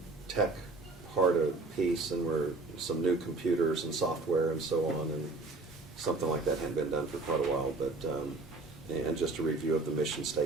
tech part of piece, and we're some new computers and software and so on, and something like that hadn't been done for quite a while, but and just a review of the mission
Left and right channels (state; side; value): quieter; left; 3.5 dB